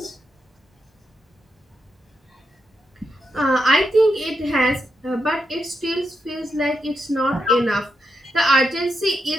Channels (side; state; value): both; normal; correlation 0.84